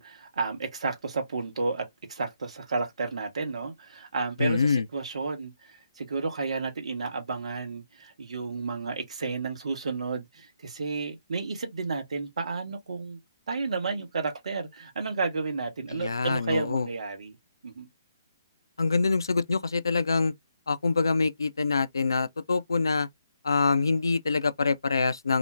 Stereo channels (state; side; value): inverted; both; correlation -0.82